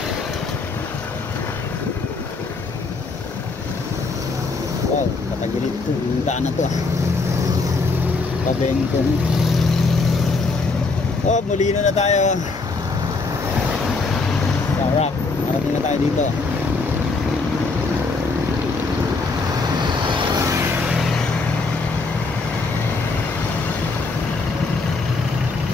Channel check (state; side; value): quieter; right; 3.9 dB